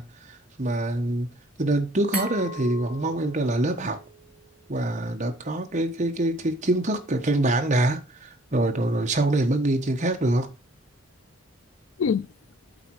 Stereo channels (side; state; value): both; normal; correlation 0.58